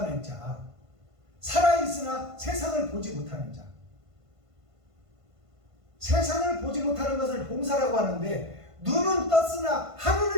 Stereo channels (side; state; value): left; late; 1.5 ms